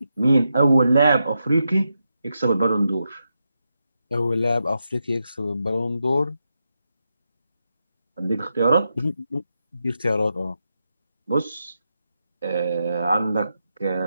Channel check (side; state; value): both; inverted; correlation -0.86